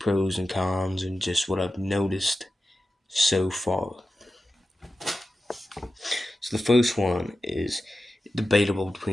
and cons and just what I've noticed so far. So the first one is debatable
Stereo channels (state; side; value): normal; both; correlation 0.93